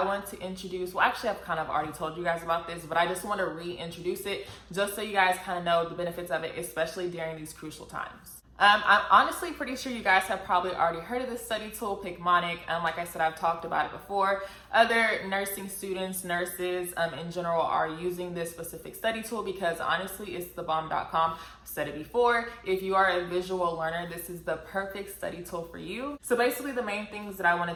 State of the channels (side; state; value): both; identical; correlation 1.00